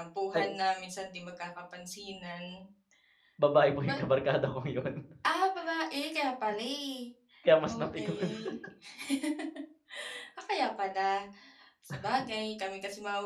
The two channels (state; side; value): identical; both; correlation 1.00